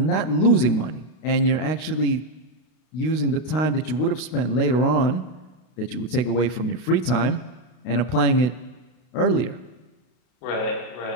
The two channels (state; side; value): late; right; 32 ms